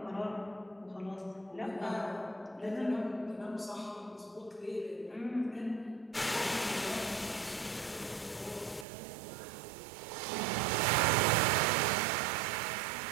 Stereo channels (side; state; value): left; drops out; at 8.8 s